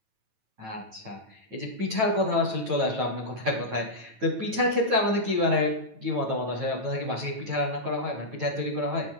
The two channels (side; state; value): left; late; 9.1 ms